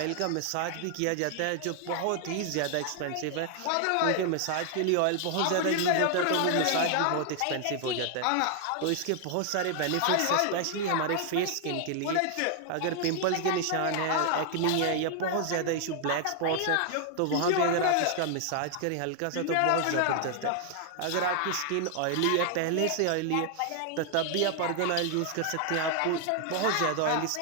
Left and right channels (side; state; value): both; different; correlation 0.00